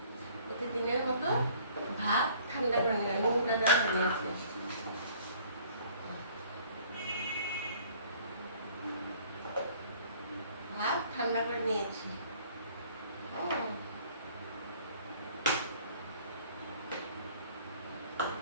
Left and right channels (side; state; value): both; inverted; correlation -0.55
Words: প্রতিদিনের মতো ভাত ঠান্ডা করে নিলাম, নুনটা দেওয়া নিয়েছি। ভাত ঠান্ডা করে নিয়েছি।